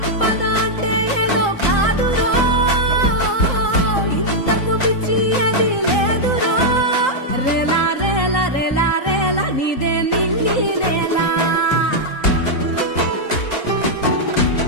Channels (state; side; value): late; right; 3.8 ms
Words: అంటే ఏదో కాదురో, ఇంతకు మించి అది లేదురో. రేలా రేలా రేలా రేలా నీదే నింగి నేలా,